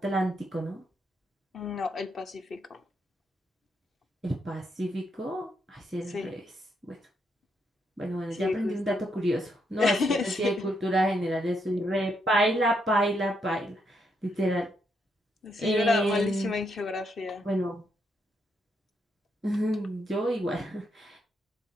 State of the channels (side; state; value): both; normal; correlation 0.78